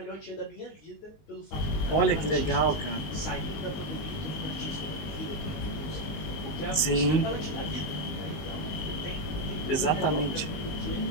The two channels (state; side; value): late; right; 20 ms